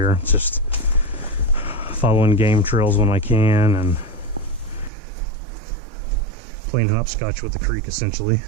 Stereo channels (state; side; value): drops out; left; at 4.9 s